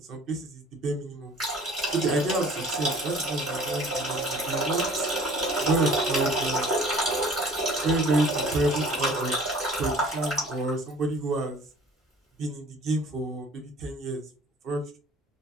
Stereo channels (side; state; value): both; normal; correlation 0.49